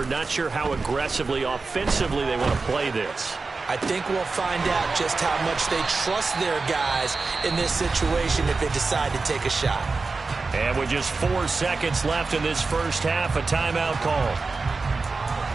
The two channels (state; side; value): quieter; left; 4.0 dB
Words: not sure how aggressively, offensively they want to play this. I think we'll find out just how much they trust their guys in this situation if they decide to take a shot. And with just 4 seconds left in this first half, a timeout call.